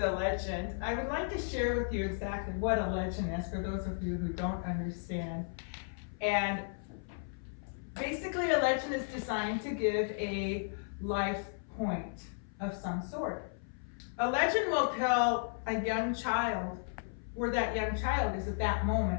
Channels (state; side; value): silent; right; 55 dB below the other